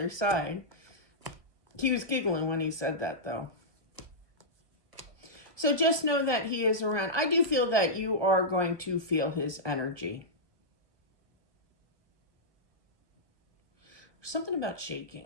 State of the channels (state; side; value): late; left; 1.2 ms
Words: side. He was giggling when he said that, though. So just know that he is around. I do feel that you are going to feel his energy. Something about